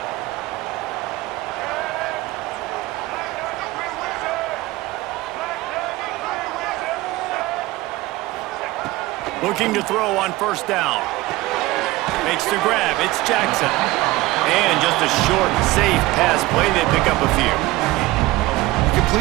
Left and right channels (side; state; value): left; quieter; 19.1 dB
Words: Looking to throw on 1st down. Makes the grab. It's Jackson. And just a short, safe pass play. They pick up a few. You